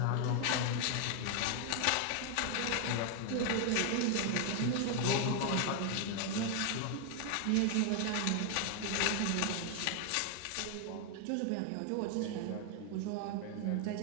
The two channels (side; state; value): both; different; correlation 0.00